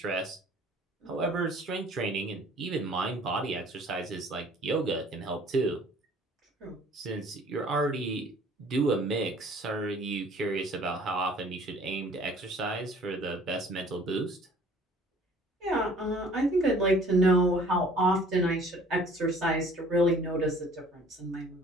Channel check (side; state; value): both; normal; correlation 0.53